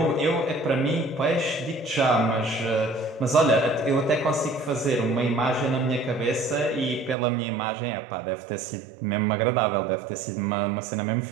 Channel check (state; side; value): drops out; left; at 7.2 s